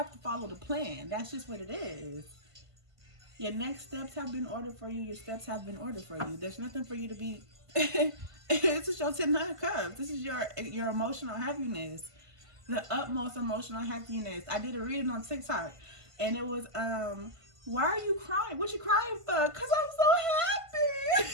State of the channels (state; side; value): late; left; 1.5 ms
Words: to follow the plan. That's just what it is. Your next steps have been ordered for you. Your steps have been ordered for you. There's nothing for you to be... This is your 10 of Cups. This is your emotional happiness. The utmost emotional happiness. I did a reading on TikTok. And it was, why are you crying? What you crying for? Because I'm so happy.